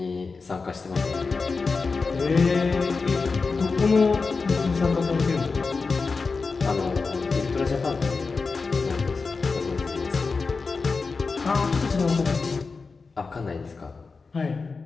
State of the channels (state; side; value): quieter; right; 4.4 dB